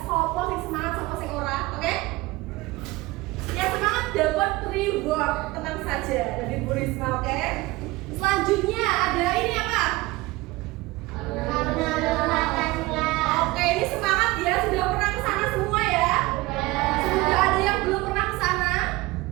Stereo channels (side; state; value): left; quieter; 20.8 dB